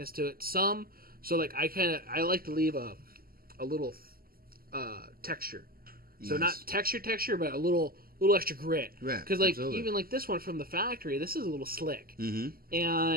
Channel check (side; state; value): left; late; 0.43 ms